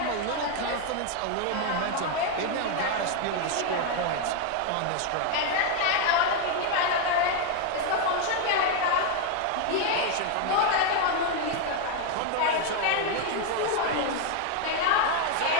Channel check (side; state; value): both; different; correlation 0.01